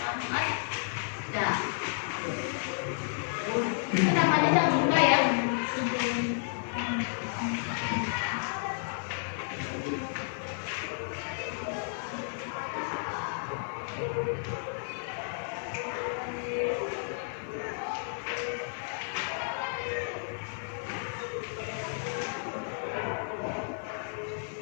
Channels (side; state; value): right; silent; 56 dB below the other